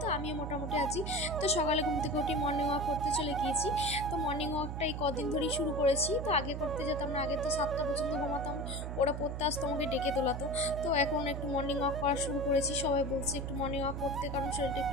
তো আমিও মোটামুটি আছি। তো সকালে ঘুম থেকে উঠে মর্নিং ওয়াক করতে চলে গিয়েছি। তো মর্নিং ওয়াকটা এই কদিন ধরেই শুরু করেছি। তো আগে করতে যেতাম না, আগে তো 7টা পর্যন্ত ঘুমাতাম, ওরা পড়তে আসতো, আমাকে ডেকে তোলাতো। তো এখন একটু মর্নিং ওয়াক করা শুরু করেছি। সবাই বলছে একটু মর্নিং ওয়াক করতে, কারণ শরীরটা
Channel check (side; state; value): right; noise; hum, 5 dB below the sound